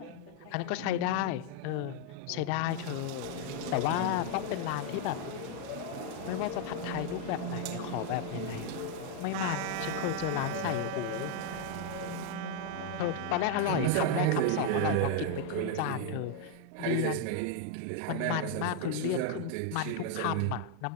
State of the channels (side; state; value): both; different; correlation 0.00